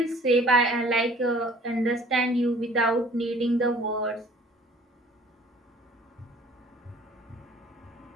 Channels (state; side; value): normal; both; correlation 0.52